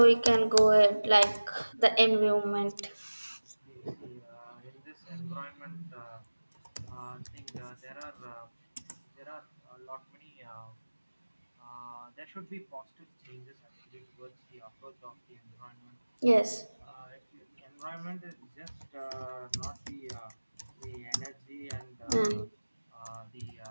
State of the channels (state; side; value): inverted; both; correlation -1.00